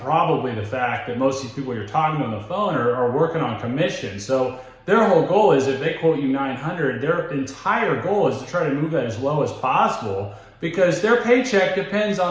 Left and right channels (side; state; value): both; identical; correlation 1.00